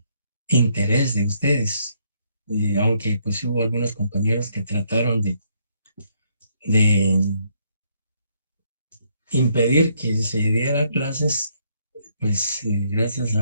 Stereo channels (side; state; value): both; inverted; correlation -0.71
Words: interés de ustedes. Aunque pues hubo algunos compañeros que trataron de impedir que se diera clases, pues gracias